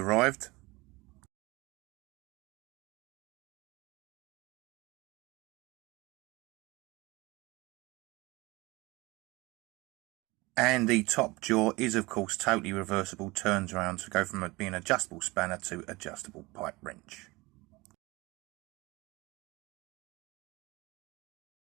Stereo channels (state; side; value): quieter; left; 22.8 dB